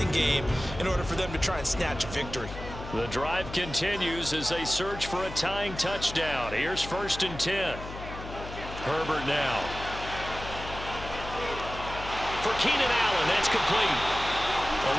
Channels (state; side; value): noise; left; hum, 11 dB below the sound